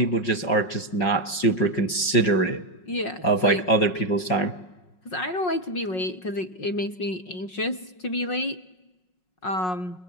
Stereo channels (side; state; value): right; late; 5.5 ms